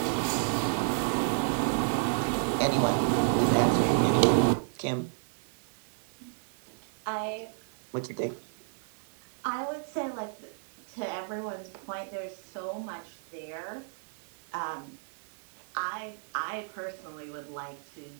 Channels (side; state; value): left; silent; digital silence